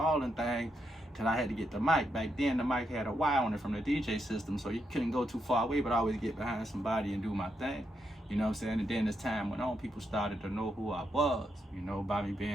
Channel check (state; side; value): normal; both; correlation 0.82